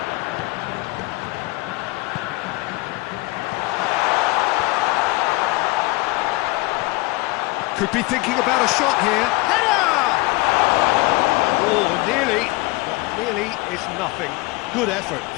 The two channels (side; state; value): right; quieter; 22.8 dB